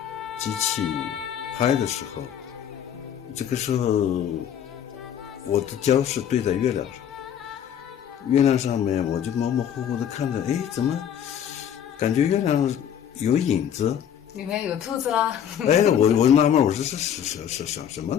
机器拍的时候，这个时候我的焦是对在月亮上，月亮上面我就模模糊糊的看着，哎，怎么感觉月亮有影子？里面有兔子啦！哎，我纳闷，我说是什么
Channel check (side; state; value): right; quieter; 9.2 dB